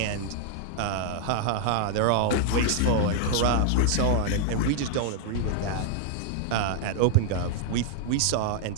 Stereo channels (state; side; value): different; both; correlation 0.00